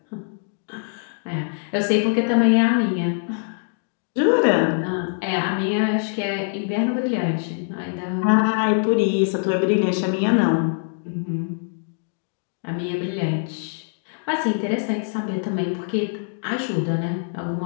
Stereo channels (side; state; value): right; silent; digital silence